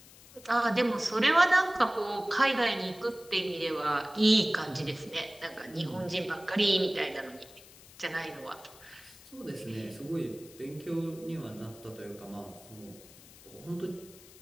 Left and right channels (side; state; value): left; noise; hiss, 21 dB below the sound